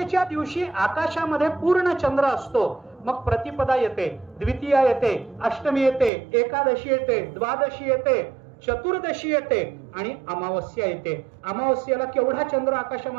दिवशी आकाशामध्ये पूर्ण चंद्र असतो. मग प्रतिपदा येते, द्वितीया येते, अष्टमी येते, एकादशी येते, द्वादशी येते, चतुर्दशी येते आणि अमावस्या येते. अमावस्याला केवढा चंद्र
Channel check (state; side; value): drops out; left; at 6.1 s